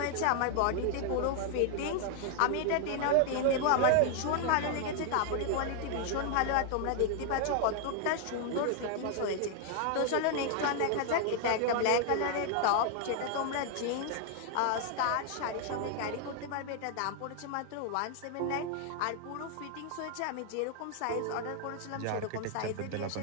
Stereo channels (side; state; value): both; different; correlation 0.00